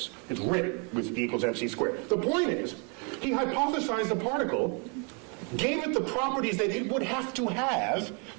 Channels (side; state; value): left; quieter; 36.6 dB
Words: It's written with E equals MC squared. The point is, he hypothesized the particle, gave it the properties that it would have to